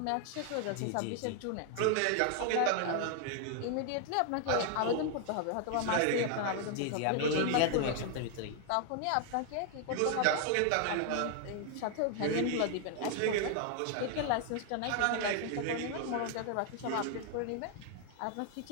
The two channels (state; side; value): different; both; correlation 0.00